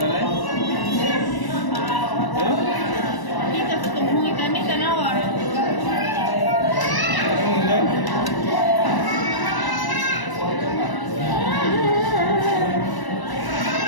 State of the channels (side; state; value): right; late; 1.0 ms